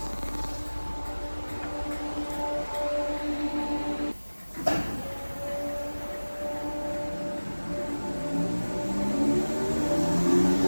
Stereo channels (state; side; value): inverted; both; correlation -1.00